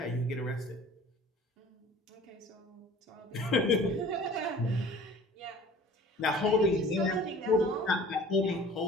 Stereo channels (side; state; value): both; normal; correlation 0.47